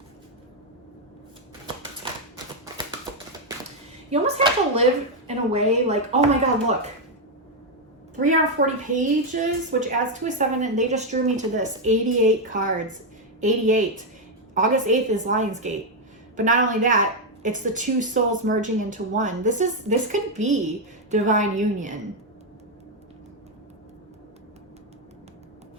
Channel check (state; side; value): normal; both; correlation 0.02